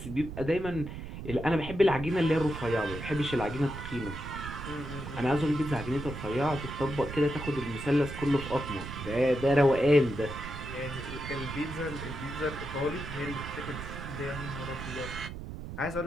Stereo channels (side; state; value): right; noise; rumble, 9 dB below the sound